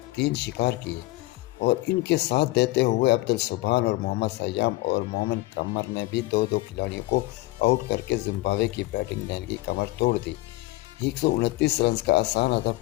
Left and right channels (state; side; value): quieter; right; 19.2 dB